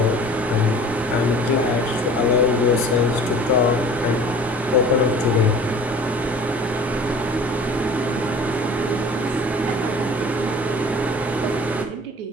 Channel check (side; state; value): both; normal; correlation 0.45